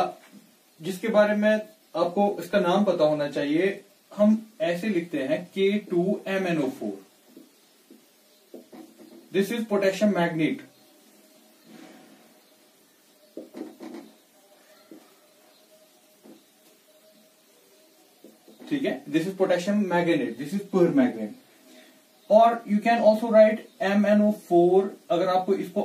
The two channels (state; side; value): identical; both; correlation 1.00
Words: जिसके बारे में आपको इसका नाम पता होना चाहिए, हम ऐसे लिखते हैं K2MnO4. This is potassium magnet. ठीक है, this is potassium magnet, this is permanganate. और you can also write MnO4. अगर आपको